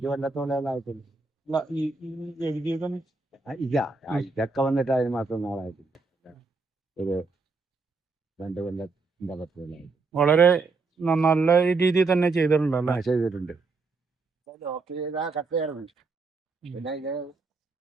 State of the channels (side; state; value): left; quieter; 4.0 dB